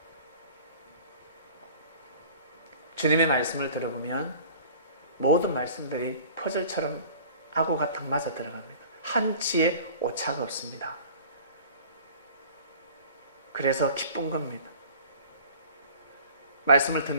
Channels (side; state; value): both; inverted; correlation -0.46